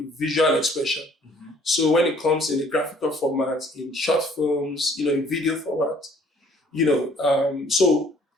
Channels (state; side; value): normal; both; correlation 0.58